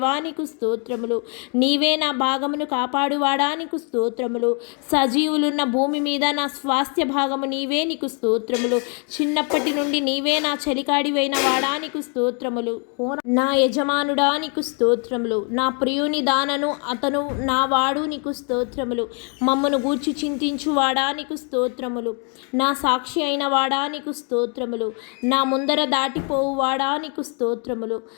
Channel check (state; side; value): quieter; right; 38.2 dB